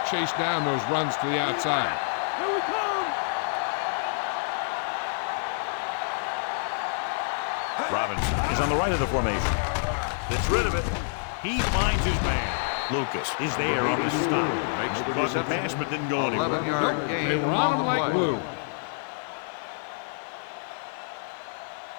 chase down those runs to the outside. Robinson is on the right of the formation. Gets rid of it. He finds his man. Lucas is there on the stop. Caught the pass but didn't go anywhere. Nope, they were on him like glue.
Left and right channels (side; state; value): right; silent; digital silence